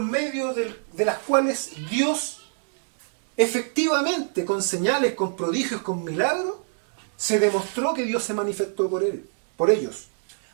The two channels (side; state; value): left; silent; digital silence